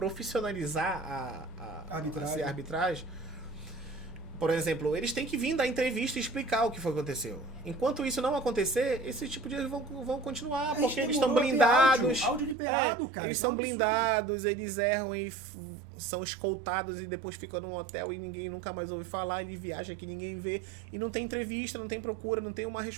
a arbitragem. Por exemplo, eles têm que vir dar entrevista e explicar o que foi que aconteceu. Enquanto isso não acontecer, esse tipo de erros vão continuar, porque eles estão blindados. Áudio liberado, cara. Eles são blindados, eles erram e são escoltados e depois ficam num hotel e ninguém nunca mais ouve falar, ele viaja que ninguém vê. E não tem entrevista, não tem procura, não tem uma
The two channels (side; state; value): left; drops out; at 12.6 s